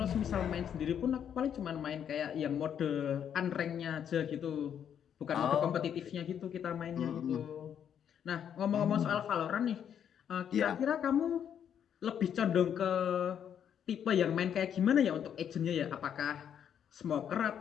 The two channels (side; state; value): right; quieter; 8.8 dB